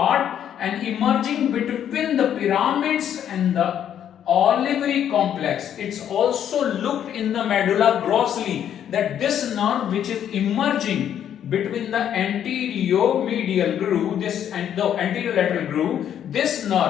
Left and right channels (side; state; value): right; quieter; 9.7 dB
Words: and emerging between the pyramids and the olivary complex. It's also looked in the medulla grossly that this nerve which is emerging between the anterior medial groove, this and the anterior lateral groove, this